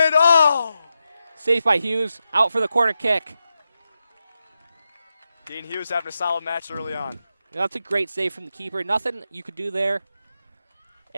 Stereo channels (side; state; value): both; inverted; correlation -0.88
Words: Oh! Saved by Hughes. Out for the corner kick. Dean Hughes having a solid match early on. That's a great save from the keeper. Nothing you could do there.